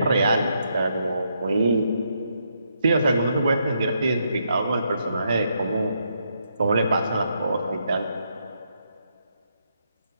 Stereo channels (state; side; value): inverted; both; correlation -0.78